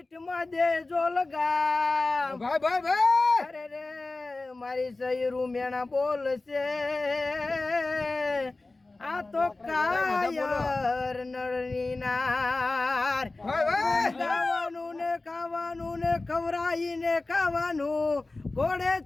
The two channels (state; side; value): quieter; right; 3.2 dB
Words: દેજો લગામ. અરે રે મારી સૈરું મેણા બોલશે, આ તો કાયર નળની નાર. ખાવાનું ને ખાવાનું ને ખવરાઈને ખાવાનું, ઘોડે